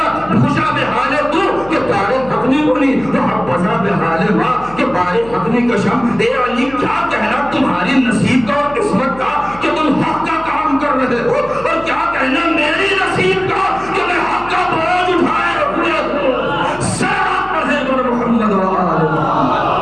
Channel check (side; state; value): left; noise; hum, 19 dB below the sound